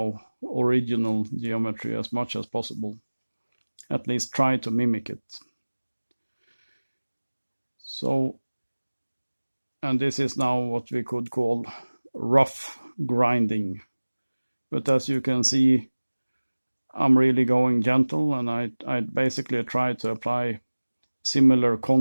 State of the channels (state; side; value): inverted; both; correlation -1.00